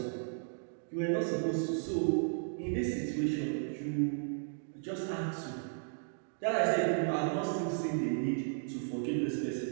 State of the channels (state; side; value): silent; left; digital silence